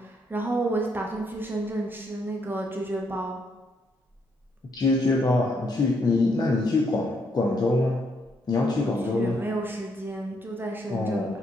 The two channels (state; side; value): normal; both; correlation 0.74